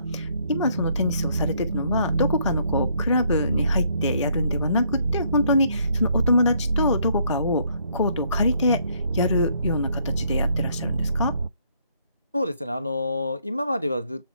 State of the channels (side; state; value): both; inverted; correlation -0.68